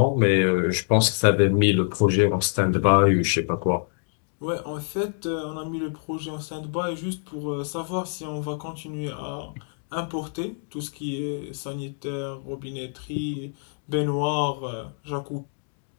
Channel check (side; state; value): right; silent; 56 dB below the other